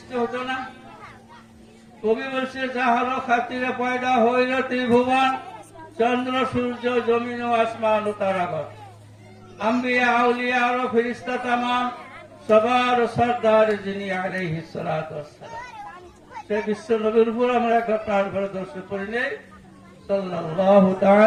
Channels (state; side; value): identical; both; correlation 1.00